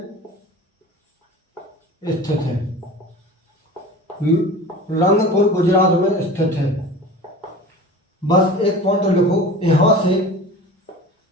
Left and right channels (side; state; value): both; normal; correlation 0.37